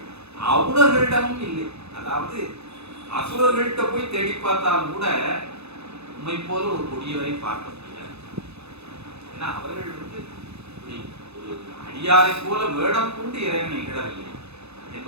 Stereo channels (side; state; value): left; late; 0.80 ms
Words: அவுணர்களிடமும் இல்லை. அதாவது அசுரர்கள்ட்ட போய் தேடி பார்த்தாலும் கூட உண்மை போல ஒரு கொடியவரை பார்க்க முடியாது. ஏன்னா அவர்கள் ஒரு அடியாரை போல வேடம் கொண்டு இறைவனை இகழவில்லை